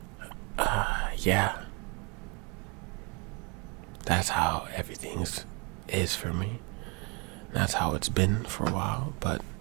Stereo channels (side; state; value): left; quieter; 31.0 dB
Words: Yeah. That's how everything is for me. That's how it's been for a while, but